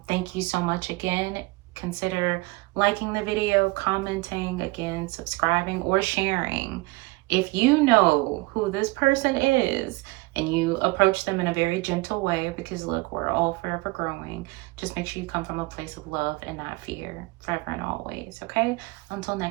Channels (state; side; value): quieter; left; 23.6 dB